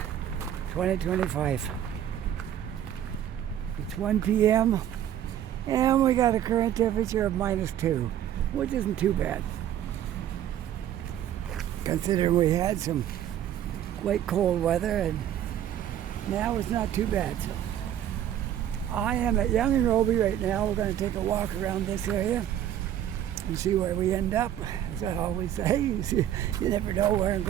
2025. It's 1 p.m. and we got a current temperature of -2, which isn't too bad. Considering we had some quite cold weather and now it's not too bad. So I am at Younge and Robie right now. We're going to take a walk around this area and see where we end up. As I always say, you never know where I'm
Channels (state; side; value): quieter; left; 10.9 dB